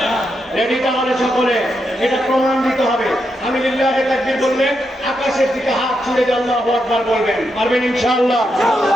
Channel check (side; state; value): both; normal; correlation 0.83